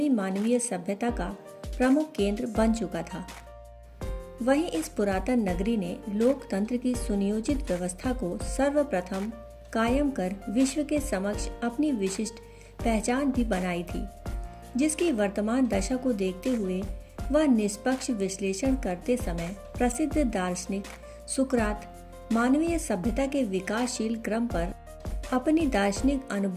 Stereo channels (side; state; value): both; identical; correlation 1.00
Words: मानवीय सभ्यता का प्रमुख केंद्र बन चुका था। वहीं इस पुरातन नगरी ने लोकतंत्र की सुनियोजित व्यवस्था को सर्वप्रथम कायम कर विश्व के समक्ष अपनी विशिष्ट पहचान भी बनाई थी, जिसकी वर्तमान दशा को देखते हुए वह निष्पक्ष विश्लेषण करते समय प्रसिद्ध दार्शनिक सुकरात मानवीय सभ्यता के विकासशील क्रम पर अपनी दार्शनिक